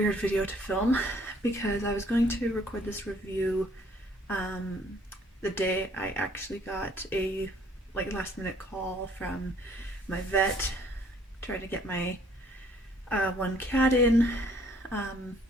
video to film because I was going to record this review the day I actually got a last minute call from my vet trying to get my one cat in,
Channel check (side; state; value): both; normal; correlation 0.61